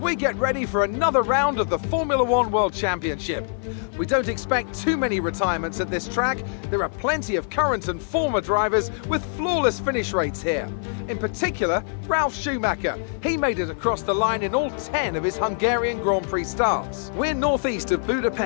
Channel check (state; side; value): silent; right; 58 dB below the other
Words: get ready for another round of the Formula One World Championship. We don't expect too many retirements at this track. There are plenty of current and former drivers with flawless finish rates here. In particular, Ralf Schumacher. He made it across the line in all 10 of his Hungarian Grand Prix starts. We're northeast of